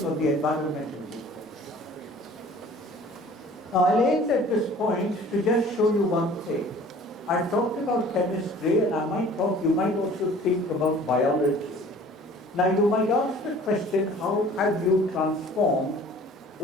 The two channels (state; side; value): normal; both; correlation 0.49